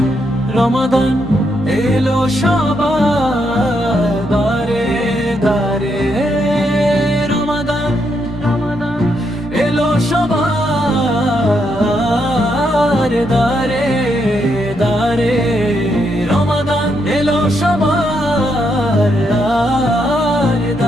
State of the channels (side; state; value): both; normal; correlation 0.78